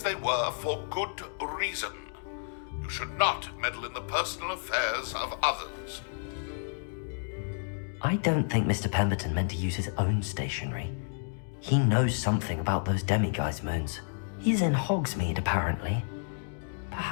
they were for good reason. You should not meddle in the personal affairs of others. I don't think Mr. Pemberton meant to use his own stationery. He knows something about those demiguise moons. He's in Hogsmeade, apparently.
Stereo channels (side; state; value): right; silent; digital silence